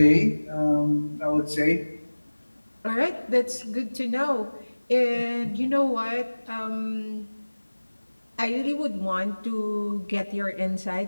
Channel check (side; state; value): both; inverted; correlation -1.00